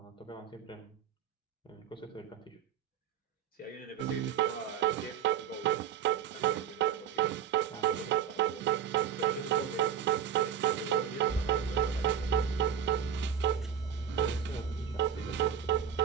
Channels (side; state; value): left; quieter; 8.6 dB